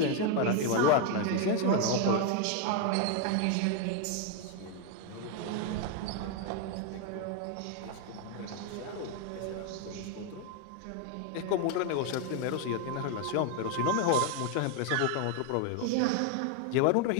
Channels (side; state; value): both; different; correlation 0.01